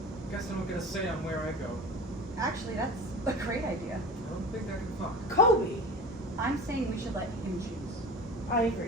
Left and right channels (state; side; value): normal; both; correlation 0.35